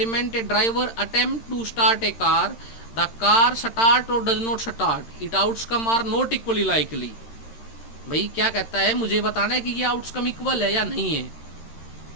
a driver attempt to start a car. The car start or does not start. Its outcome are not equally likely. भाई क्या कहता है, मुझे बताना है कि ये आउटकम इक्वल है या नहीं है।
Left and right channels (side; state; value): right; late; 13 ms